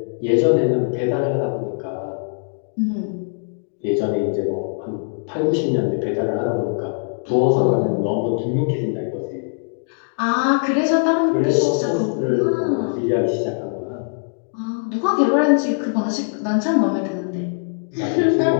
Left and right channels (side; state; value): right; silent; digital silence